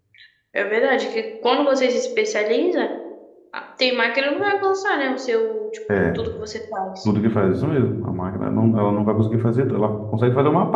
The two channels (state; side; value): identical; both; correlation 1.00